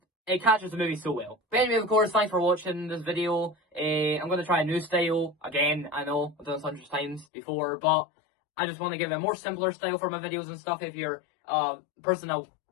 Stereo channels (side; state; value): right; drops out; at 7.2 s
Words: it catches the movie so well. But anyway, of course, thanks for watching this video. I'm going to try a new style. Again, I know I've done this hundreds of times before, but I just want to give a more simpler style for my videos and stuff. If you're a person that